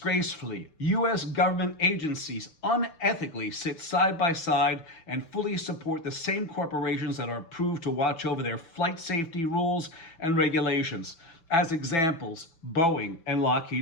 U.S. government agencies unethically sit side by side and fully support the same corporations that are approved to watch over their flight safety rules and regulations. As examples, Boeing and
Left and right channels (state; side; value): late; right; 6.0 ms